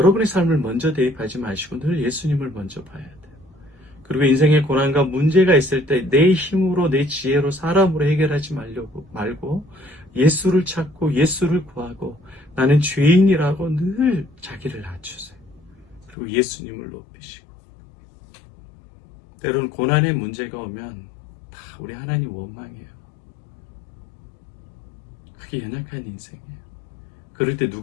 삶을 먼저 대입하지 마시고 늘 예수님을 먼저 봐야 돼요. 그리고 인생의 고난과 문제가 있을 때 내 힘으로, 내 지혜로, 사람으로 해결하지 말고 예수를 찾고 예수를 구하고 나는 죄인이라고 늘 자기를 낮추세요. 그리고 예수님을 높이시고, 때로는 고난의 문제가 오면 다 우리 하나님 원망해요. 그게 연약한 인생이에요. 그럴 때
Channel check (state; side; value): drops out; right; at 16.2 s